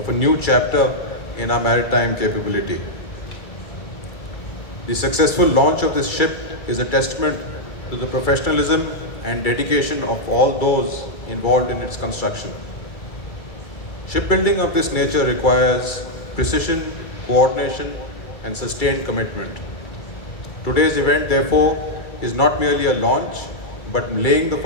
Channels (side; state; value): right; late; 2.3 ms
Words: a new chapter in our maritime capability. The successful launch of this ship is a testament to the professionalism and dedication of all those involved in its construction. Shipbuilding of this nature requires precision, coordination, and sustained commitment. Today's event, therefore, is not merely a launch, but laying the